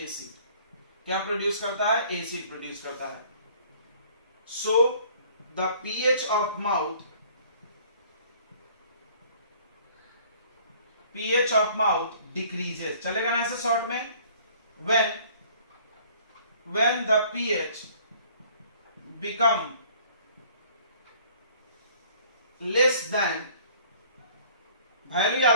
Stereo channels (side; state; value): both; inverted; correlation -0.55